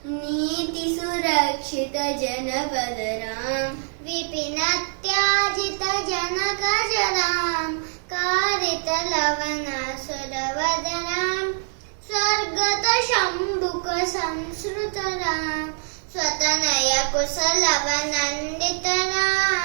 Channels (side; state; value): left; silent; 57 dB below the other